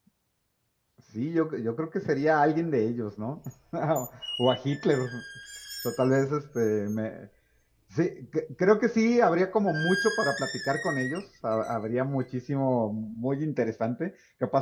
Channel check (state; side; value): identical; both; correlation 1.00